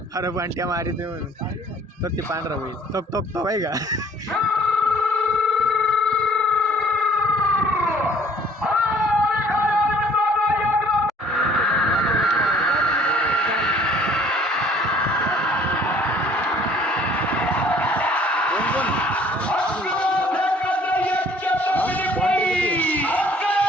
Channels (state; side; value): normal; both; correlation 0.55